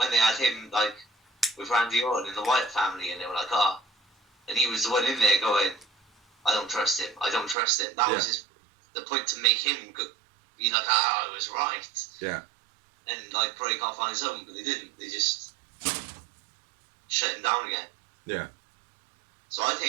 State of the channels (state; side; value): drops out; left; at 7.6 s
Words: had him, like, with Randy Orton in the Wyatt family, and they were like, oh. And he was the one in there going, I don't trust him. I don't trust him. That was the point to make him be like, I was right. Yeah. And, like, break off on his own, but they didn't. They just shut him down again. Yeah. So I